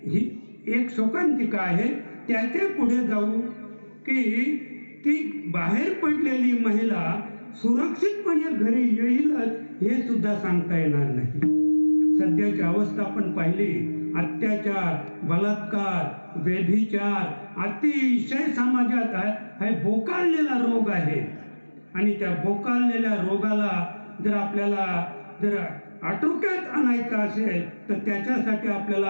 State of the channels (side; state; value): both; inverted; correlation -1.00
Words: ही एक शोकांतिका आहे. त्याच्या पुढे जाऊ की ती बाहेर पडलेली महिला सुरक्षितपणे घरी येईलच हे सुद्धा सांगता येणार नाही. सध्याची अवस्था आपण पाहिली, अत्याचार, बलात्कार, व्यभिचार अतिशय समाजात हा बोकाळलेला रोग आहे. आणि त्या बोकाळलेल्या रोगाला जर आपल्याला जर आटोक्यात आणायचं असेल तर त्याच्यासाठी